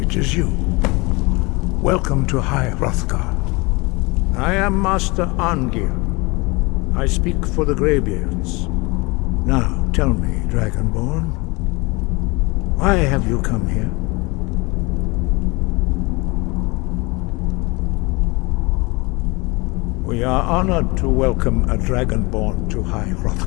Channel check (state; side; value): quieter; right; 25.8 dB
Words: it is you. Welcome to High Hrothgar. I am Master Arngeir. I speak for the Greybeards. Now, tell me, Dragonborn, why have you come here? We are honored to welcome a Dragonborn to High